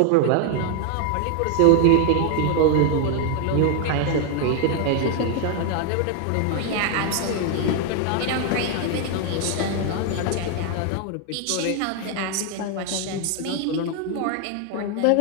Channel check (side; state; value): both; different; correlation 0.01